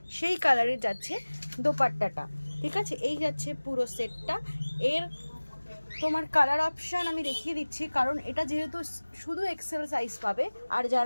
সেই কালারের যাচ্ছে দোপাট্টাটা। ঠিক আছে, এই যাচ্ছে পুরো সেটটা। এর তোমার কালার অপশান আমি দেখিয়ে দিচ্ছি, কারণ এটা যেহেতু শুধু এক্সেল সাইজ পাবে, আর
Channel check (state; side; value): inverted; both; correlation -1.00